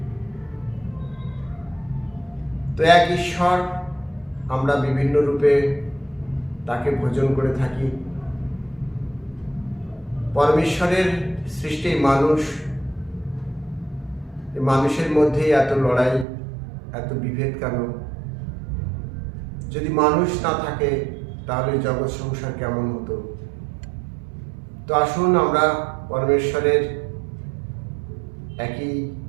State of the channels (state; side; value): drops out; left; at 16.2 s